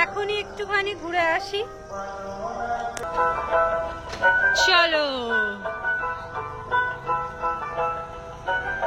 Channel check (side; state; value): both; identical; correlation 1.00